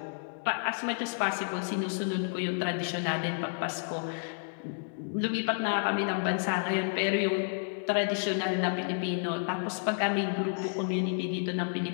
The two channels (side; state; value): right; silent; digital silence